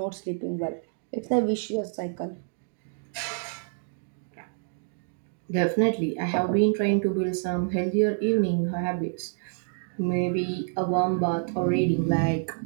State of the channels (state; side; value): silent; left; digital silence